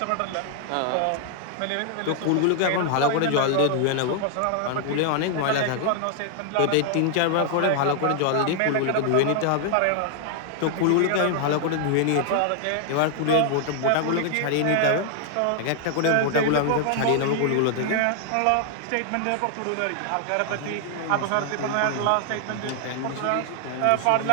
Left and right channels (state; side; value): different; both; correlation 0.00